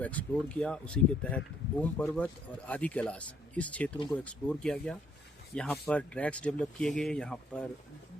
एक्सप्लोर किया। उसी के तहत ओम पर्वत और आदि कैलाश इस क्षेत्रों को एक्सप्लोर किया गया। यहाँ पर ट्रैक्स डेवलप किए गए, यहाँ पर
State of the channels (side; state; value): both; normal; correlation 0.68